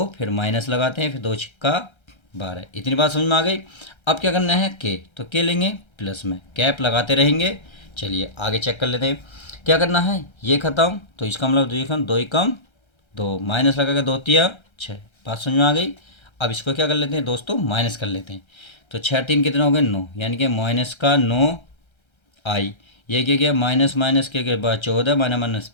फिर माइनस लगाते हैं, फिर 2 छिक्का 12। इतनी बात समझ में आ गई। अब क्या करना है, के, तो के लेंगे प्लस में, कैप लगाते रहेंगे। चलिए आगे चेक कर लेते हैं क्या करना है, ये खत्म, तो इसका मतलब 2 एकम 2, माइनस लगा के 2 तिया 6। बात समझ में आ गई। अब इसको क्या कर लेते हैं दोस्तों, माइनस कर लेते हैं। तो 6 3 कितना हो गए 9, यानी कि माइनस का 9 आई। ये क्या गया, माइनस माइनस के बाद 14 माइनस माइनस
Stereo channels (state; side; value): late; right; 1.3 ms